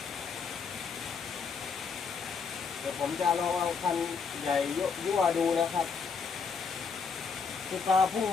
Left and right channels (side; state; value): right; quieter; 5.5 dB